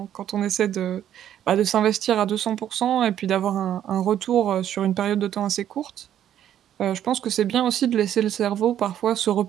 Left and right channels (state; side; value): quieter; left; 10.7 dB